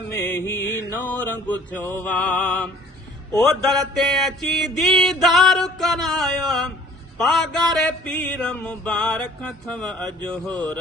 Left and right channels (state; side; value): normal; both; correlation 0.52